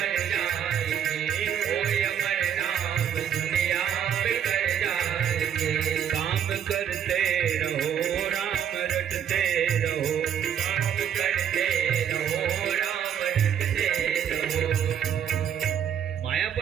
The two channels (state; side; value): quieter; left; 9.0 dB